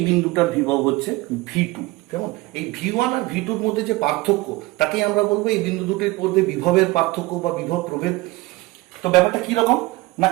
বিন্দুটার বিভব হচ্ছে V2। কেমন? এই V1 আর V2 এর মধ্যে যে পার্থক্য তাকেই আমরা বলবো এই বিন্দু দুটির মধ্যে বিভবের পার্থক্য বা বিভব প্রভেদ। তো ব্যাপারটা কি রকম না,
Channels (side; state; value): left; quieter; 20.6 dB